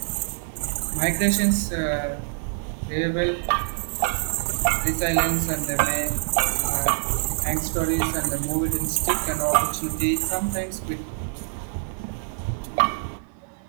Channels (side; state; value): left; silent; digital silence